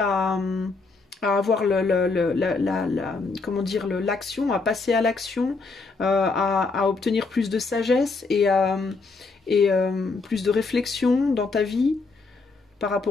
avoir comment dire, l'action, à passer à l'action, à obtenir plus de sagesse et plus de réflexion dans ta vie. Par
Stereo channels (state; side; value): quieter; right; 4.0 dB